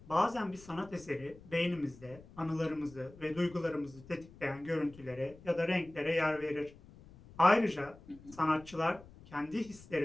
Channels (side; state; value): left; noise; rumble, 21 dB below the sound